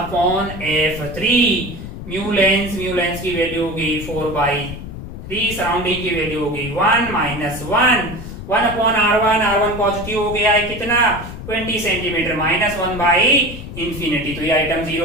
म्यू लेंस की वैल्यू होगी 4/3, सराउंडिंग की वैल्यू होगी 1 - 1 1/r1, r1 पॉजिटिव हो गया है कितना 20 सेंटीमीटर, -1/इंफिनिटी। तो ये आइटम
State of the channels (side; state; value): left; noise; rumble, 10 dB below the sound